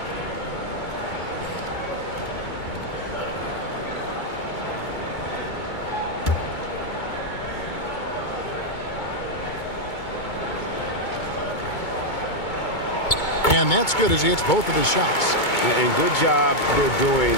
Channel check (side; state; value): right; late; 2.2 ms